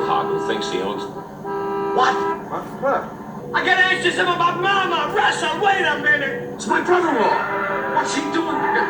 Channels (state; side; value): identical; both; correlation 1.00